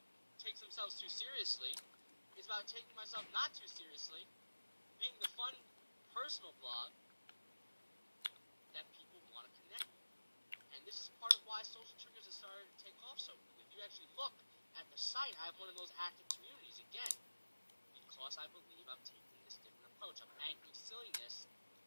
takes themselves too seriously. It's about taking myself not too seriously, being the fun, personal blog that people want to connect with. And this is part of why Social Triggers has started to take off so quickly. If you actually look at the site, I have one of those active communities again, because I believe I'm taking this different approach. I'm anchoring silliness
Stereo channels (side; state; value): both; inverted; correlation -1.00